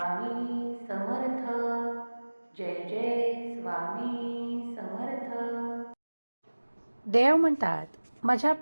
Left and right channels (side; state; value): both; inverted; correlation -1.00